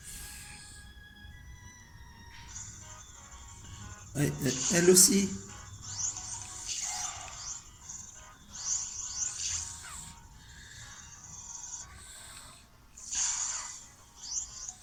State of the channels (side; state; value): both; identical; correlation 1.00